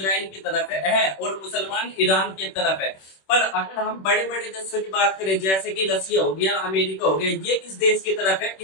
की तरफ है और मुसलमान ईरान की तरफ है। पर अगर हम बड़े बड़े देशों की बात करें, जैसे कि रसिया हो गया, अमेरिका हो गया, ये किस देश की तरफ है,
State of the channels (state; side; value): late; right; 26 ms